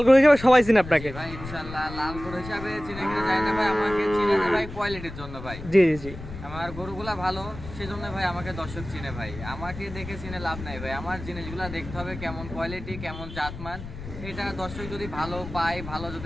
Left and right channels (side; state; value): left; noise; rumble, 11 dB below the sound